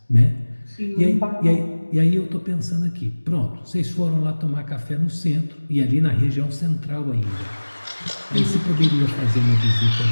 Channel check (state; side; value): inverted; both; correlation -1.00